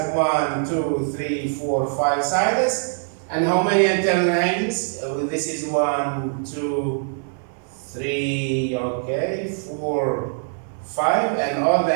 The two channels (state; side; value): silent; left; 64 dB below the other